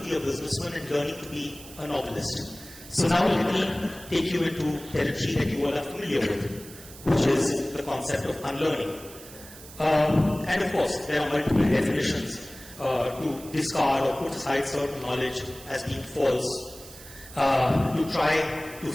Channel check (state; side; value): noise; right; hiss, 17 dB below the sound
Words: be a businessman and learning to be a novelist. So now let me take you into territory that you all are familiar with, which is the concept of unlearning. And of course, there are multiple definitions. to discard or put aside certain knowledge as being false, to try to